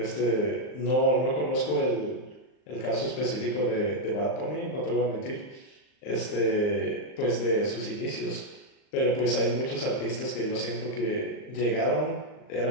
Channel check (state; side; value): late; right; 39 ms